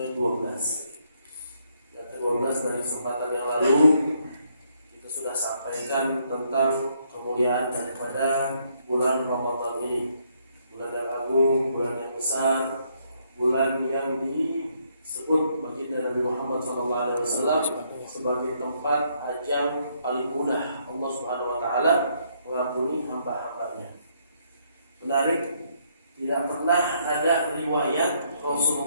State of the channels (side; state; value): both; inverted; correlation -0.72